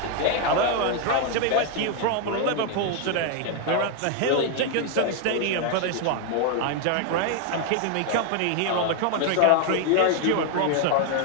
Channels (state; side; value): different; both; correlation 0.01